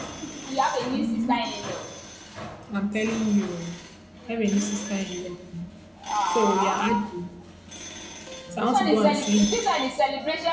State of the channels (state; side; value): identical; both; correlation 1.00